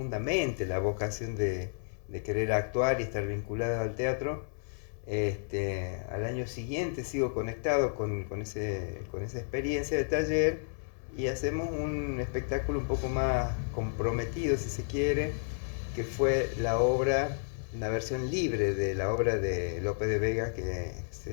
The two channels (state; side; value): silent; right; 57 dB below the other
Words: la vocación de querer actuar y estar vinculado al teatro. Al año siguiente sigo conectado con esa experiencia de taller y hacemos un espectáculo un poco más comprometido, si se quiere, que fue la versión libre de la obra de Lope de Vega, que